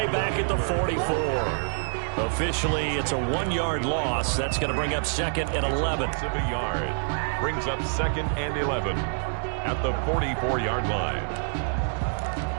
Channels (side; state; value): left; silent; digital silence